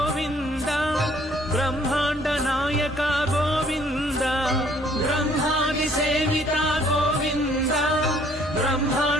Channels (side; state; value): both; normal; correlation 0.61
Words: బ్రహ్మాండ నాయక గోవింద బ్రహ్మాది సేవిత గోవింద